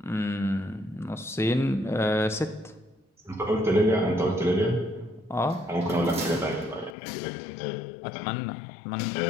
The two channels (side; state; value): right; drops out; at 7.0 s